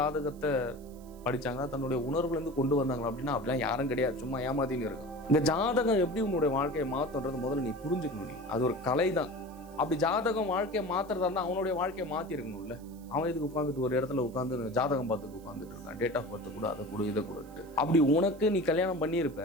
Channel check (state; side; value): noise; right; hiss, 26 dB below the sound